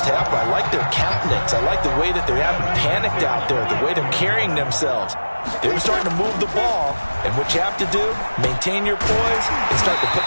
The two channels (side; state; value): both; inverted; correlation -1.00